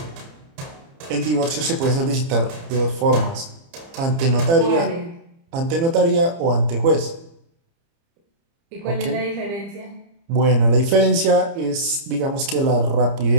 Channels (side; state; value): left; late; 30 ms